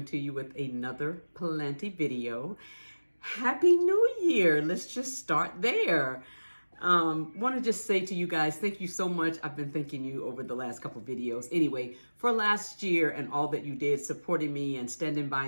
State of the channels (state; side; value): inverted; both; correlation -1.00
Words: to you with another planty video. Happy New Year. Let's just start there. Want to just say to you guys, thank you so much. I've been thanking you over the last couple videos. Anyway, for last year and all that you did, supporting me and standing